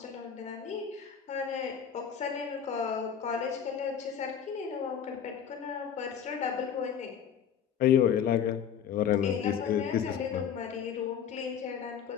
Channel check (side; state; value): right; quieter; 8.2 dB